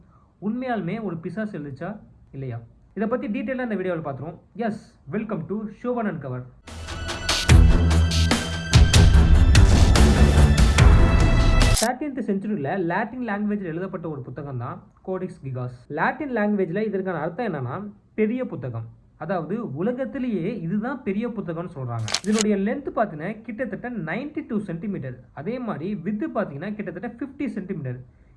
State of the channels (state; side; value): identical; both; correlation 1.00